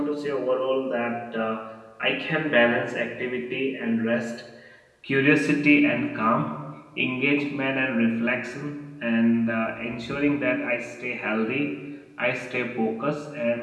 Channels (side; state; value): both; identical; correlation 1.00